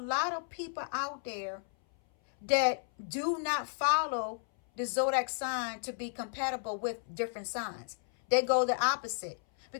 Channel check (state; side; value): silent; right; 56 dB below the other